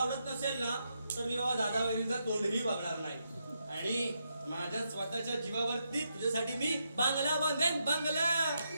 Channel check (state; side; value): inverted; both; correlation -0.81